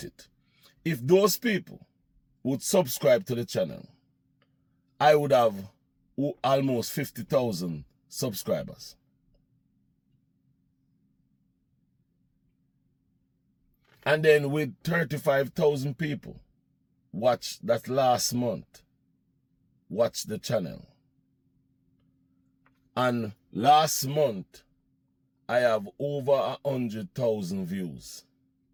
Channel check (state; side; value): identical; both; correlation 1.00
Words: it. If those people would subscribe to the channel, I would have almost 50,000 subscribers. And then with 35,000 people watch that last month, watch the channel. And last month, I have over 100,000 views.